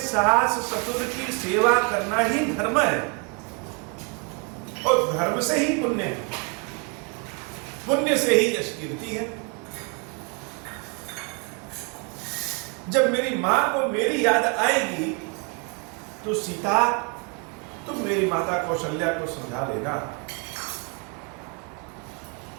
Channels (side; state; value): left; quieter; 35.0 dB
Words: ससुर की सेवा करना ही धर्म है, और धर्म से ही पुण्य है, पुण्य से ही यश कीर्ति है। जब मेरी मां को मेरी याद आएगी तो सीता, तुम मेरी माता कौशल्या को समझा देना।